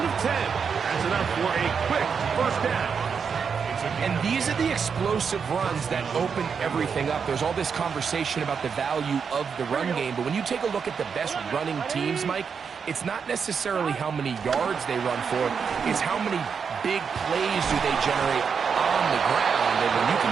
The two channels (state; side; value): quieter; left; 6.3 dB